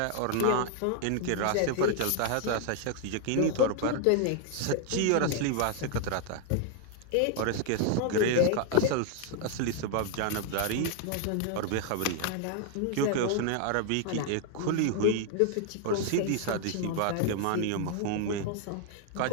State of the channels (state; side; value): different; both; correlation 0.00